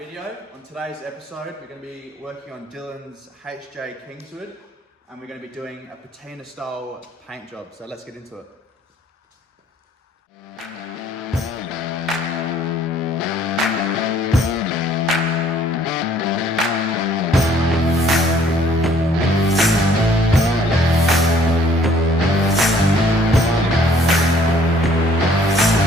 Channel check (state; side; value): normal; both; correlation 0.60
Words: On today's episode, we're going to be working on Dylan's HJ Kingswood, and we're going to be doing a patina style paint job. So let's get into it.